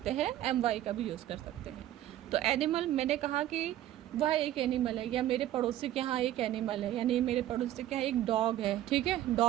हैं, MY का भी यूज़ कर सकते हैं। तो एनिमल मैंने कहा कि वह एक एनिमल है, या मेरे पड़ोसी के यहाँ एक एनिमल है, यानी मेरे पड़ोसी के यहाँ एक डॉग है, ठीक है,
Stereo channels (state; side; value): quieter; left; 13.2 dB